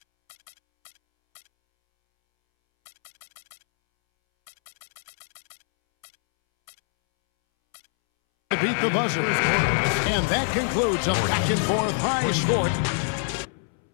beat the buzzer. And that concludes a back-and-forth high score.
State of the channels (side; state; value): right; silent; 62 dB below the other